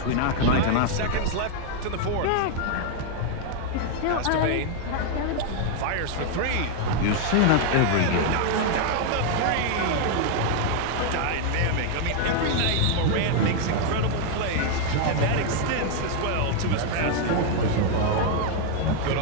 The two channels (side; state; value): both; different; correlation 0.00